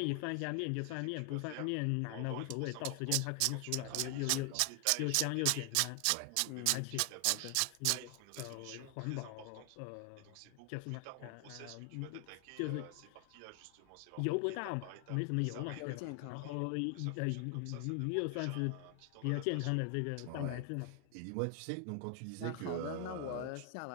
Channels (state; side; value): different; both; correlation 0.00